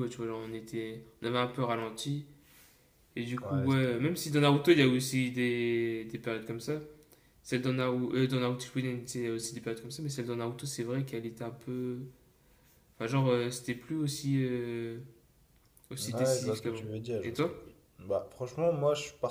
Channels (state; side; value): identical; both; correlation 1.00